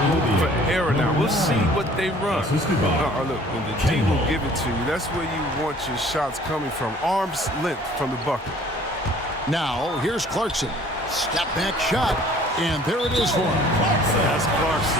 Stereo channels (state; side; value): normal; both; correlation 0.53